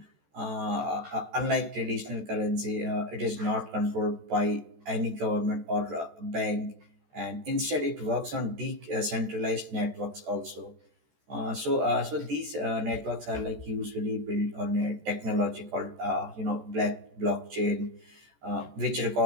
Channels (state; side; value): late; left; 14 ms